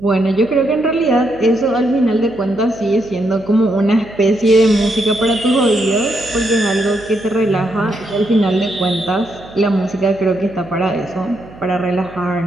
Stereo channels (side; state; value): right; noise; hum, 21 dB below the sound